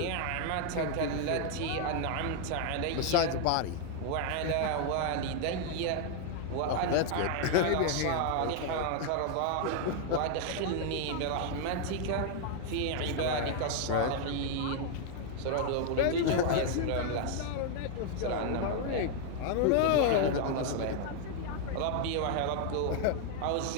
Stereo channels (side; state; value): both; different; correlation 0.00